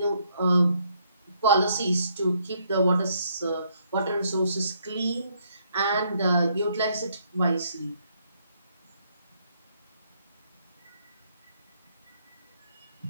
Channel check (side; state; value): both; inverted; correlation -0.71